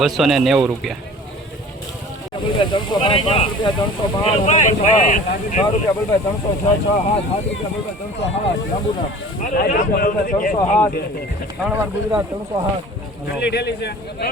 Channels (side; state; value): both; normal; correlation 0.44